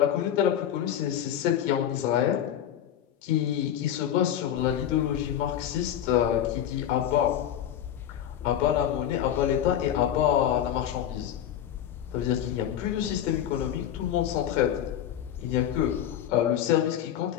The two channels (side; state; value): right; quieter; 10.4 dB